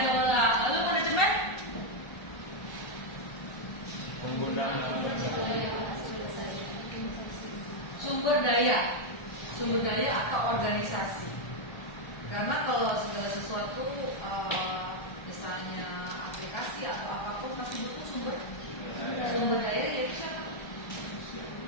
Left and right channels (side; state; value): right; late; 1.3 ms